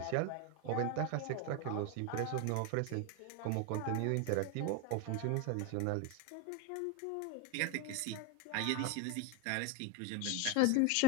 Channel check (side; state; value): both; different; correlation 0.02